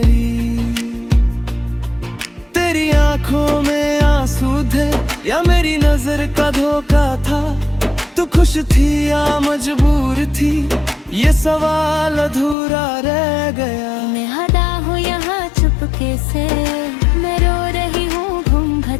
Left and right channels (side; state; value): right; drops out; at 12.6 s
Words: तेरी आंखों में आंसू थे या मेरी नजर का धोखा था, तू खुश थी या मजबूर थी, ये सवाल अधूरा रह गया। मैं हदा हूँ यहाँ चुपके से, मैं रो रही हूँ